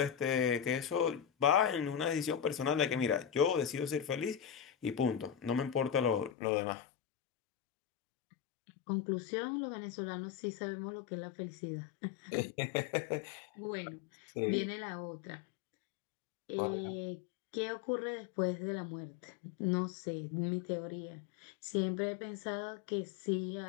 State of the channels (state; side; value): drops out; right; at 6.3 s